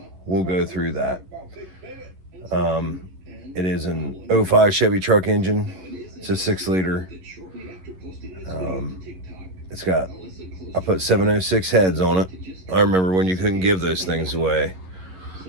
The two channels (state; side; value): late; left; 11 ms